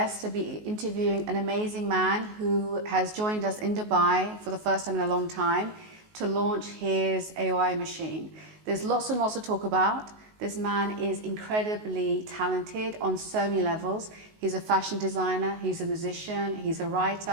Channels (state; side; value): late; left; 19 ms